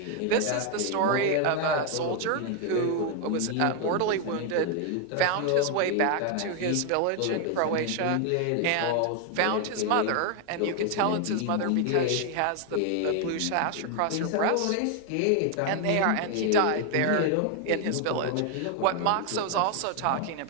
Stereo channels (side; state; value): both; different; correlation 0.01